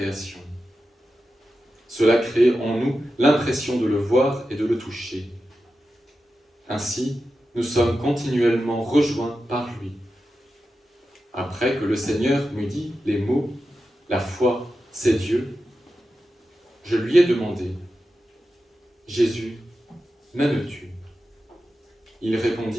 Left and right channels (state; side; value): normal; both; correlation 0.91